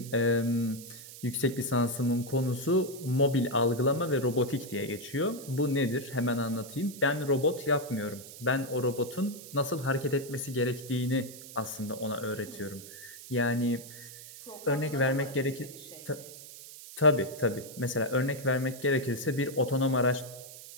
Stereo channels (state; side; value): noise; right; hiss, 15 dB below the sound